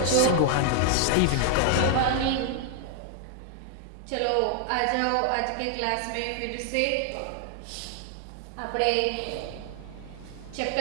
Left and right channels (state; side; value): different; both; correlation 0.00